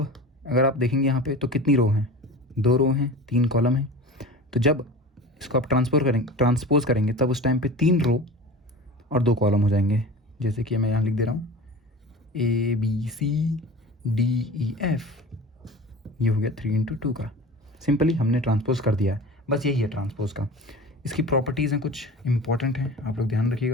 अगर आप देखेंगे यहाँ पे तो कितनी रो हैं, 2 रो हैं, 3 कॉलम हैं। तो जब इसको आप ट्रांसपोज करेंगे तब उस टाइम पे 3 रो और 2 कॉलम हो जाएंगे। जैसे कि मैं यहाँ लिख दे रहा हूँ ABCDEF, ये हो गया 3 इंटू 2 का। सिंपली हमने ट्रांसपोज कर दिया है, बस यही है ट्रांसपोज का। इसकी प्रॉपर्टीज़ हैं, कुछ इंपॉर्टेंट हैं, आप लोग ध्यान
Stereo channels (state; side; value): normal; both; correlation 0.36